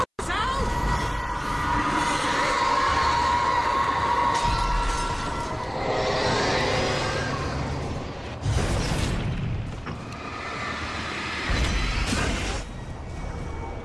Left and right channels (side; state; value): both; identical; correlation 1.00